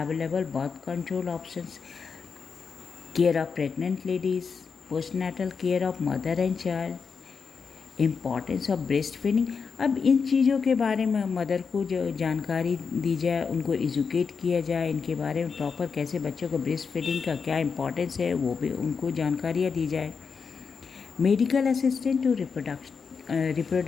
birth control options, care of pregnant ladies, postnatal care of mother and child, importance of breast feeding. अब इन चीज़ों के बारे में मदर को जो जानकारी दी जाए, उनको एजुकेट किया जाए, इनके बारे में प्रॉपर कैसे बच्चों को ब्रेस्ट फीडिंग का क्या इम्पॉर्टेंस है वो भी उनको जानकारियाँ दी जाए। Medical assistant to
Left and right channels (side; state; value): right; quieter; 5.6 dB